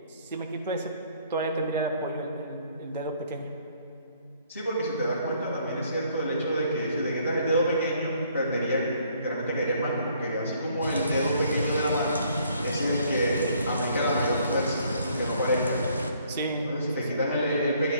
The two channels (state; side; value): inverted; both; correlation -0.64